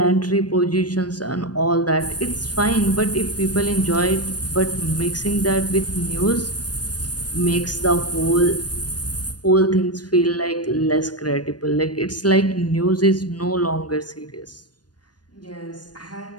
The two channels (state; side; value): late; right; 0.69 ms